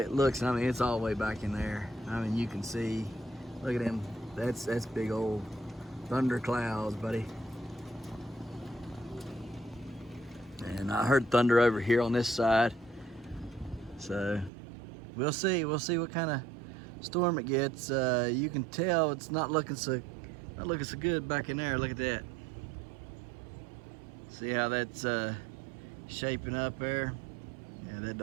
it looks. I mean, it's all the way back in there. I mean, you can see. Look at them. That's big old thunder clouds, buddy. And I heard thunder over here on this side. So we'll see what kind of storm it gets, you can tell it's not looking so good back in there. Look at that. See how that's shaping up there? Yeah, that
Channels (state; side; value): drops out; left; at 14.5 s